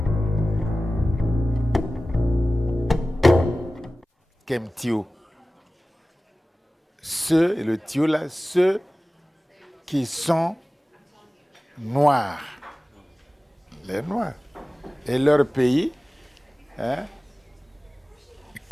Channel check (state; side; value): normal; both; correlation 0.96